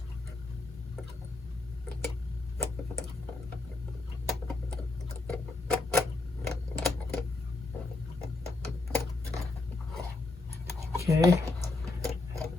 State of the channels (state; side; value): quieter; right; 3.4 dB